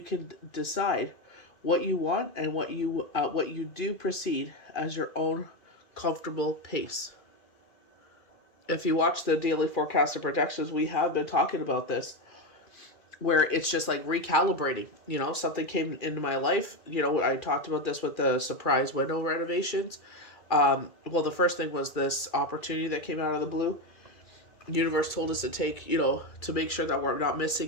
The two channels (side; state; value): right; late; 2.3 ms